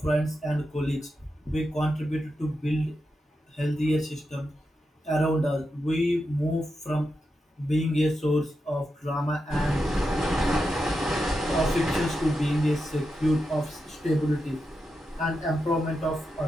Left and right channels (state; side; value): normal; both; correlation 0.88